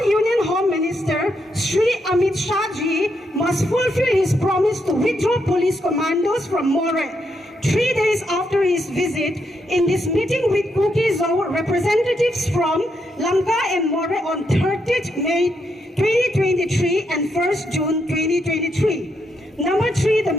Union Home Minister, Sri Amit Shahji, must fulfill his promise to withdraw police commandos from More. 3 days after his visit, in this meeting with Kuki-Zo representatives from Lamka and More on 30th May 2023 and 1st June 2023. Number 3, the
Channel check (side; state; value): both; normal; correlation 0.80